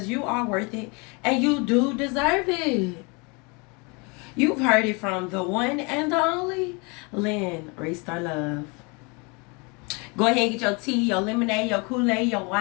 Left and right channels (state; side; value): quieter; right; 30.1 dB